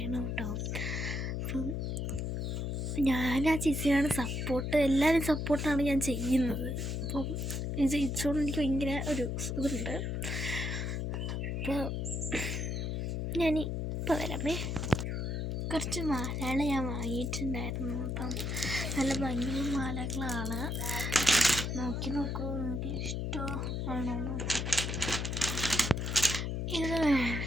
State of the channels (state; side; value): noise; left; hum, 1 dB below the sound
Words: കേട്ടോ. അപ്പം ഞാൻ ആ ചേച്ചിയാണ് സപ്പോർട്ട്, എല്ലാവരും സപ്പോർട്ടാണ് ഞാൻ ചെയ്യുന്നത്. അപ്പം ഇത് ജയിച്ചോണ്ട് എനിക്ക് ഭയങ്കര ഒരു ഇതുണ്ട്. അപ്പോൾ ഞാനിപ്പോൾ വരാമേ. കുറച്ച് മാലകൾ ഞാൻ വാങ്ങിയിട്ടുണ്ടായിരുന്നു. അപ്പം നല്ല ഭംഗിയുള്ള മാലകളാണ്. നോക്കൂ, എനിക്ക് ഇഷ്ടമാണോ. ഇത്